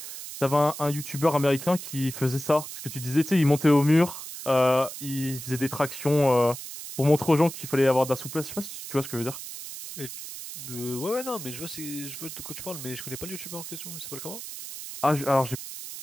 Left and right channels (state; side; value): noise; right; hiss, 10 dB below the sound